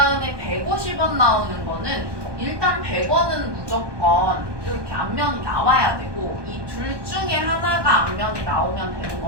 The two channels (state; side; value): late; left; 1.2 ms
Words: 150원 나오는 거는 일단 100원은 무조건 이렇게 앞면이 나와야 되고 이 둘 중에 하나가 앞면이 나오면 되는